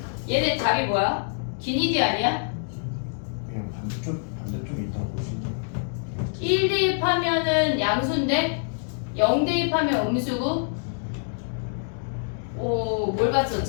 얘네 답이 뭐야? 기니디 아니야? 그냥 반대쪽에 있다고 보시면 1 대입하면은 양수인데 0 대입하면 음수고. 뭘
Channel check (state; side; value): silent; right; digital silence